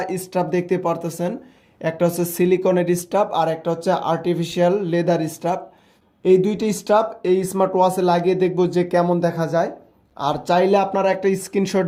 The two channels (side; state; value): both; identical; correlation 1.00